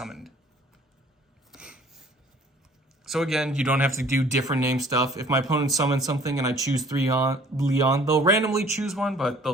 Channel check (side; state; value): both; normal; correlation 0.54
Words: So again, you don't have to do different name stuff. If my opponent summons something and I choose 3 Leon, they'll randomly choose one, but